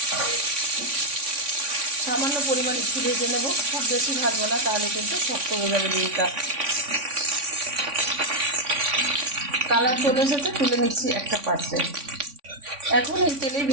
সামান্য পরিমাণ একটু ভেজে নেব, খুব বেশি ভাজবো না, তাহলে কিন্তু শক্ত হয়ে যাবে ডিমটা। কালার চলে এসেছে, তুলে নিচ্ছি একটা পাত্রে। এখন এই তেলেই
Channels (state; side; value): late; left; 3.5 ms